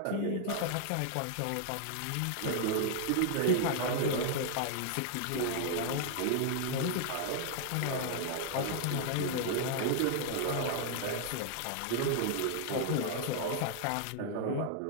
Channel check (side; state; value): both; different; correlation -0.01